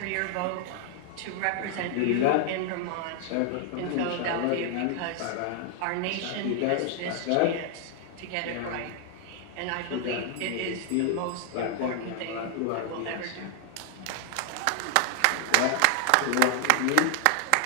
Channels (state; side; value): different; both; correlation 0.00